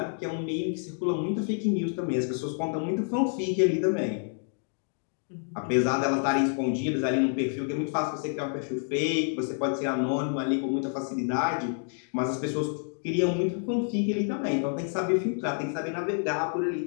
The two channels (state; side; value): silent; right; 59 dB below the other